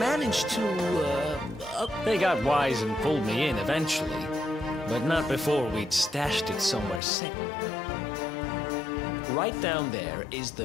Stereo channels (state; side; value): drops out; right; at 7.0 s